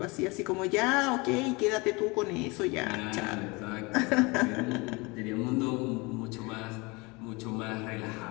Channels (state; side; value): quieter; right; 26.2 dB